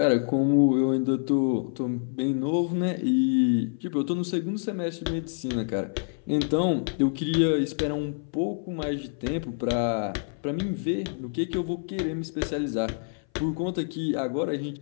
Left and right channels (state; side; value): silent; right; 57 dB below the other